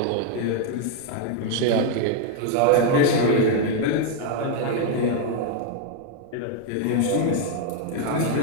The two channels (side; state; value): both; different; correlation 0.00